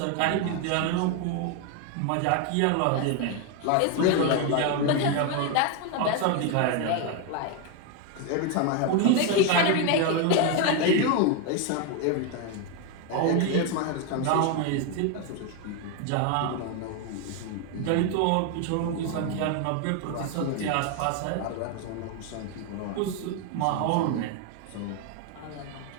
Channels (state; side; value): different; both; correlation 0.01